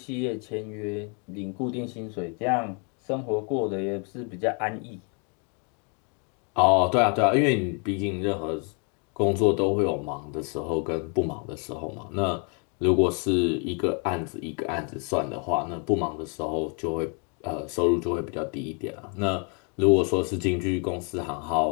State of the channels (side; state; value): right; quieter; 37.6 dB